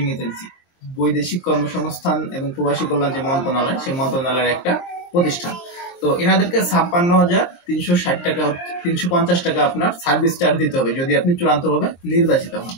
এজেন্সি, বৈদেশিক কর্মসংস্থান এবং প্রবাসী কল্যাণ যে মন্ত্রণালয়, সেই মন্ত্রণালয়ের একটা প্রতিষ্ঠান। তো এনাদেরকে 56,360 টাকা, 350 টাকা আপনার সার্ভিস চার্জ দিতে হবে যদি আপনি চূড়ান্তভাবে নির্বাচিত হন।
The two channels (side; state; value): right; late; 23 ms